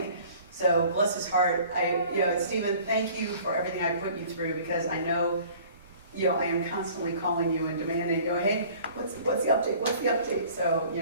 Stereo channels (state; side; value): inverted; both; correlation -0.50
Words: So, bless his heart. Stephen, thank you for everything I put you through, because I know, I am constantly calling you and demanding, hey, what's the update? What's the update? So,